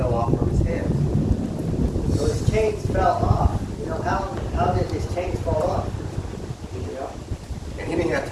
off from his hands. So his chains fell off. You know, how did his chains fall off? You know? And he didn't have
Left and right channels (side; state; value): both; identical; correlation 1.00